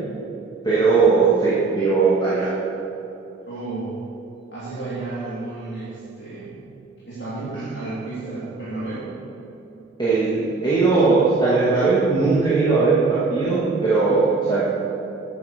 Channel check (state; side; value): quieter; left; 3.7 dB